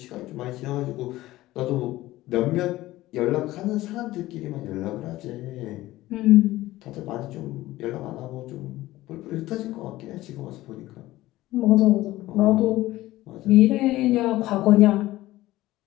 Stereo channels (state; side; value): quieter; right; 16.9 dB